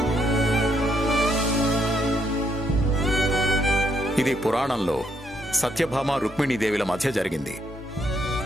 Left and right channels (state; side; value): normal; both; correlation 0.74